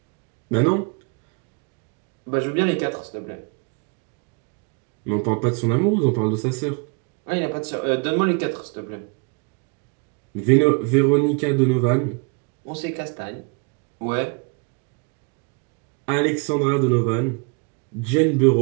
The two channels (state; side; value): quieter; left; 32.6 dB